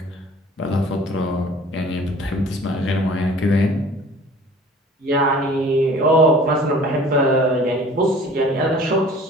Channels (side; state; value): both; normal; correlation 0.47